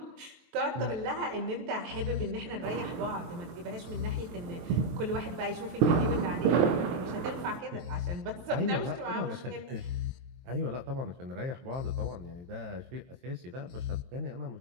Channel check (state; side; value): late; left; 23 ms